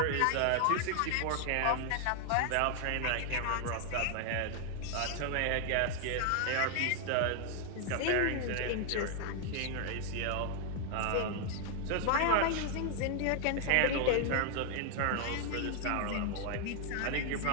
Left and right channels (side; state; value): both; different; correlation 0.00